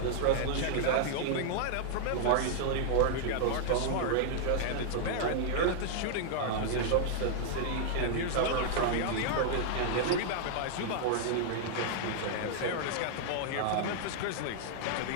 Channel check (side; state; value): both; different; correlation -0.01